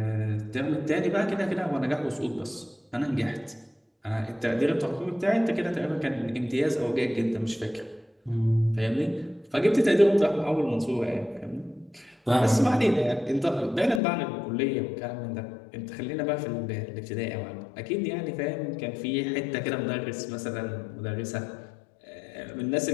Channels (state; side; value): drops out; right; at 14.0 s